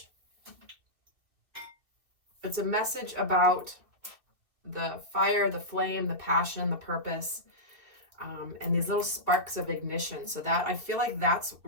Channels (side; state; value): left; late; 2.7 ms